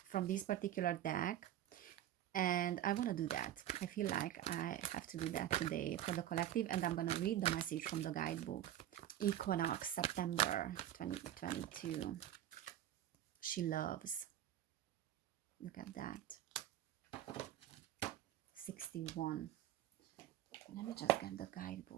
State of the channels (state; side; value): quieter; left; 12.1 dB